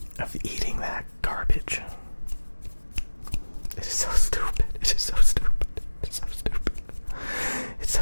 eating that garbage. It is so stupid. It is so stupid. It's so stupid. It's so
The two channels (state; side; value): inverted; both; correlation -1.00